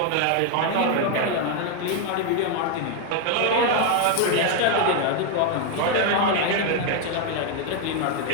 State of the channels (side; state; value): both; different; correlation 0.01